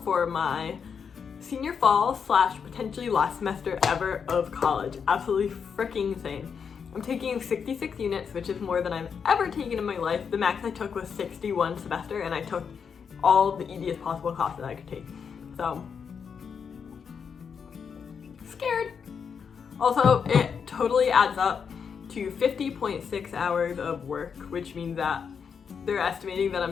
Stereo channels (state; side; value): quieter; right; 6.6 dB